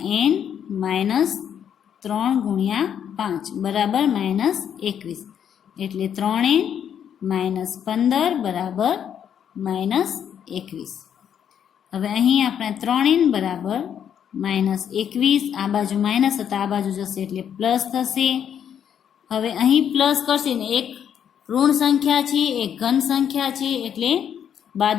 n માઇનસ 3 ગુણ્યા 5 બરાબર -21 એટલે 3n માઇનસ 15 બરાબર -21. હવે અહીં આપણે 3n બરાબર -21, આ બાજુ માઇનસ હતા આ બાજુ જશે એટલે પ્લસ થશે. હવે અહીં પ્લસ કરશે ને એક ઋણ સંખ્યા છે એક ઘન સંખ્યા છે એટલે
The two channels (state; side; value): quieter; right; 8.8 dB